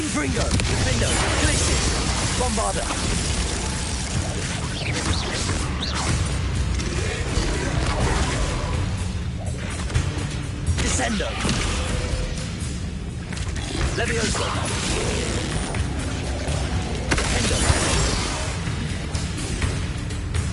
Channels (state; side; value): identical; both; correlation 1.00